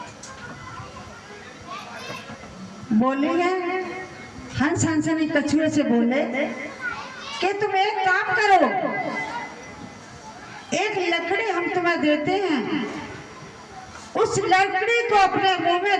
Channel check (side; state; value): both; identical; correlation 1.00